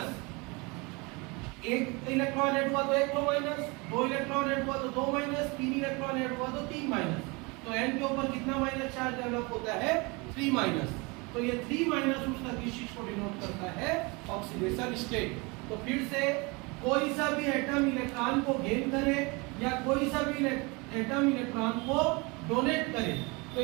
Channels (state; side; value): quieter; left; 27.5 dB